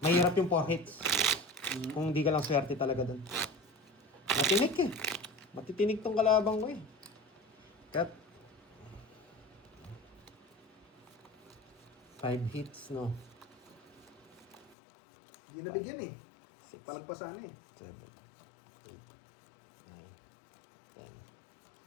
Mahirap yung 4 hits. Kung di ka lang swerte talaga dun. Matinik eh. Matitinig tong kalabang ko eh. Cut. 5 hits, no? Di nabigyan eh. Palagpasan eh. 7, 8, 9,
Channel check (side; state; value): right; drops out; at 14.8 s